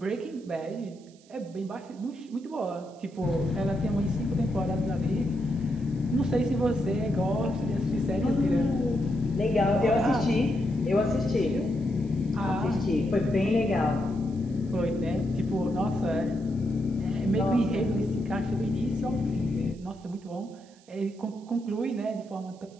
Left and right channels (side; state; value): right; noise; hiss, 28 dB below the sound